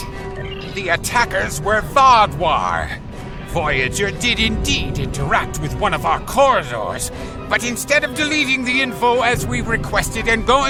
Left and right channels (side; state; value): both; identical; correlation 1.00